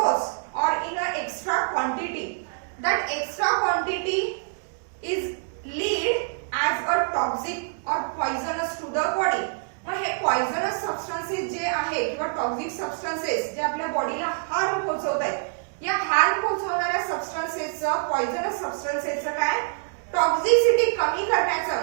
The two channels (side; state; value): left; silent; digital silence